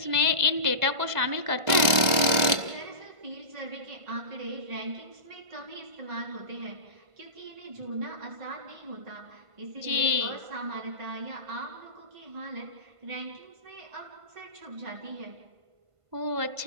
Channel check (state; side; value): late; left; 1.5 ms